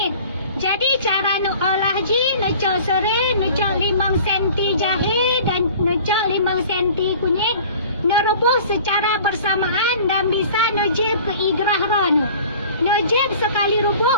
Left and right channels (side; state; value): both; inverted; correlation -0.45